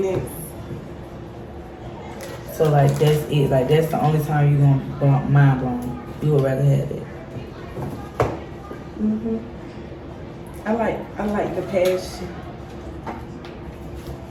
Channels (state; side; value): identical; both; correlation 1.00